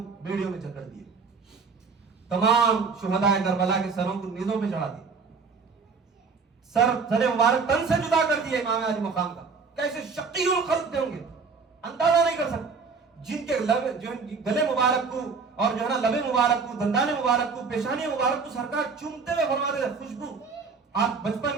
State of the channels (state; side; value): quieter; left; 5.0 dB